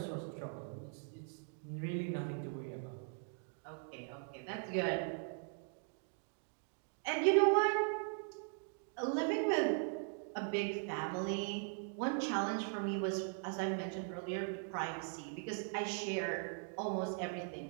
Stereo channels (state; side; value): silent; left; 51 dB below the other